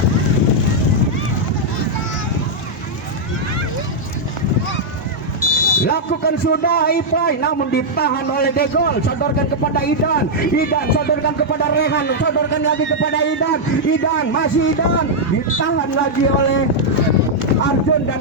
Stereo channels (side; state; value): both; normal; correlation -0.04